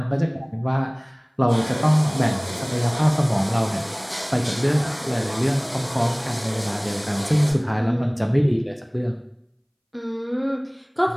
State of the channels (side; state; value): both; identical; correlation 1.00